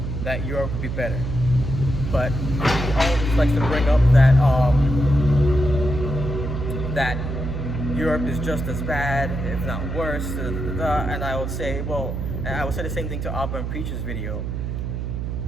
that Europe would be better, but he always likes to bring up that Europe is just as bad, if not worse, and I would say, well, and I would say the same thing to Abba and Preach's video.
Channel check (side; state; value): right; noise; hum, 3 dB below the sound